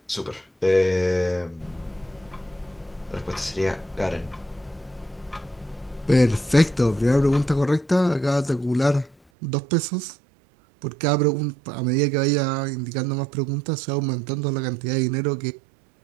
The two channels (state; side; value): drops out; left; at 9.2 s